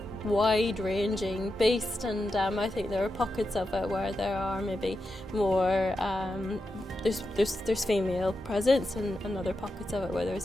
wide-ranging beast, and I think there are pockets of it where there are maybe more there's female presence, and other pockets of it where there's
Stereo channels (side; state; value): both; normal; correlation 0.88